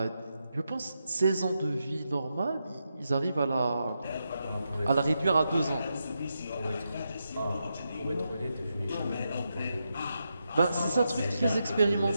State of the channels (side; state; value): both; inverted; correlation -0.86